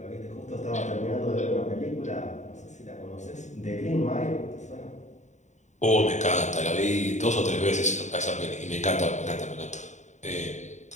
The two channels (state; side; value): late; right; 0.34 ms